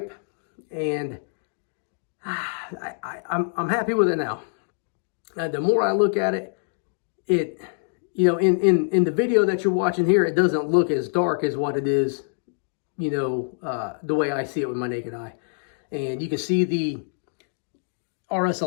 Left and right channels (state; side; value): silent; right; digital silence